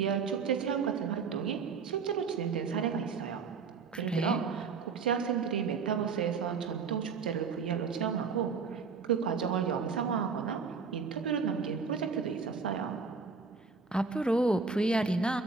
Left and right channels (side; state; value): left; quieter; 5.2 dB